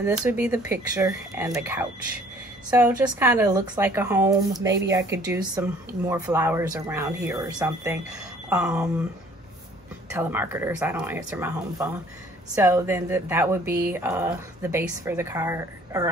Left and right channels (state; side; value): normal; both; correlation 0.56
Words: this would be the picture and the couch. So just kind of looks like a home. Maybe I could do some more flowers around here or something. Telemarketers, I don't answer my home phone. So then that would be the base for the card, or